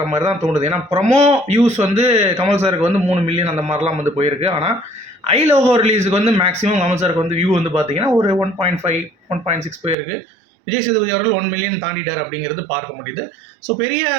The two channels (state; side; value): drops out; left; at 10.0 s